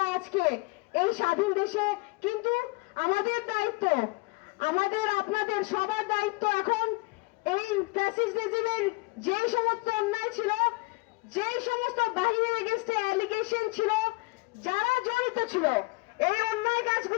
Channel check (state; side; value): quieter; right; 25.6 dB